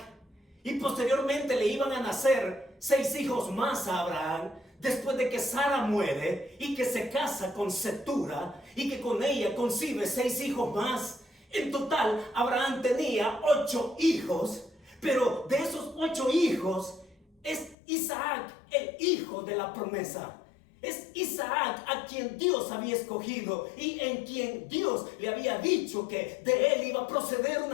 y posteriormente le iban a nacer 6 hijos más a Abraham, después de que Sara muere y que se casa con Cetura y que con ella concibe 6 hijos más. En total, Abraham tenía 8 hijos, pero de esos 8 hijos es Isaac el hijo de la promesa. Es Isaac a quien Dios había escogido y en quien Dios le había dicho que de él iba a proceder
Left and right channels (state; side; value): drops out; right; at 17.8 s